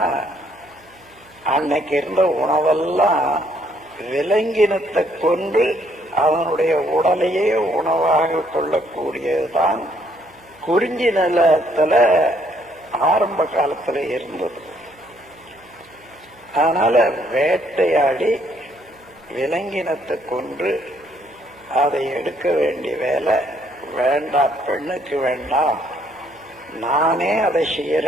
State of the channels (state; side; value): noise; right; hum, 28 dB below the sound